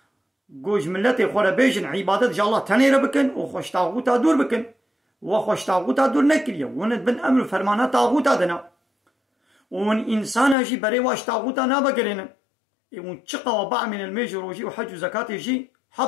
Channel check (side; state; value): right; drops out; at 10.6 s